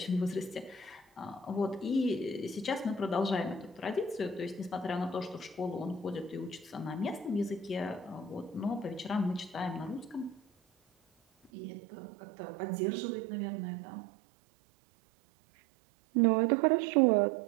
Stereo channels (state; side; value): drops out; left; at 11.5 s